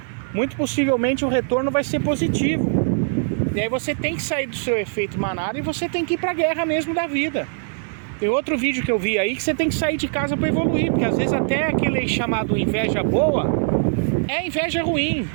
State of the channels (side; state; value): left; silent; digital silence